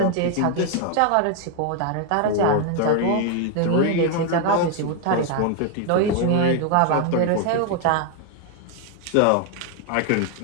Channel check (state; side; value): different; both; correlation 0.00